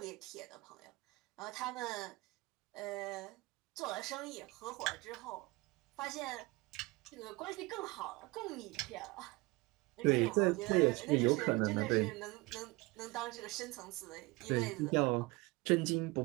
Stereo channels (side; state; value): left; quieter; 23.2 dB